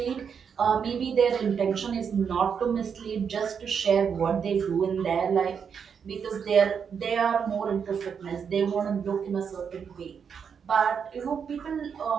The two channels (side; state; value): left; quieter; 6.9 dB